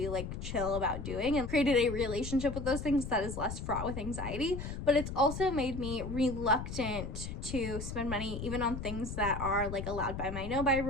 like chill about doing, and created a relationship with those things that is less fraught with anxiety. But it's also made me reluctant to spend money even on things that are like allowed by my no-buy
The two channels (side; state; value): left; noise; rumble, 6 dB below the sound